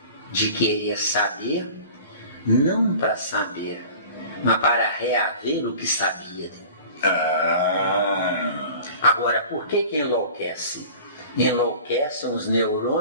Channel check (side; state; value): both; inverted; correlation -0.42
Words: de querer saber, não para saber, mas para reaver o que sabia. Agora, por que enlouquece? Enlouquecem os